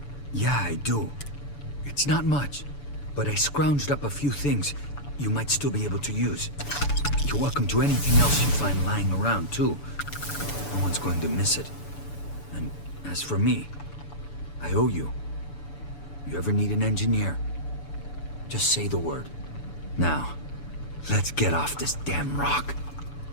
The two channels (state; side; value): late; right; 6.9 ms